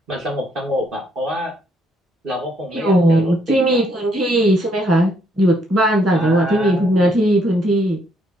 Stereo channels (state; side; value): normal; both; correlation 0.71